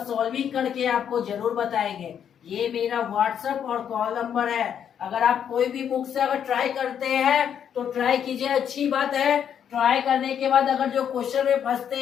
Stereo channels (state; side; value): quieter; right; 8.7 dB